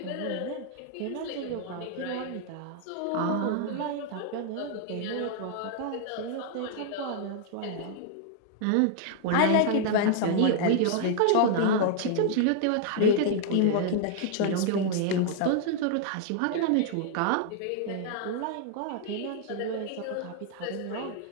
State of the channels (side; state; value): both; different; correlation -0.01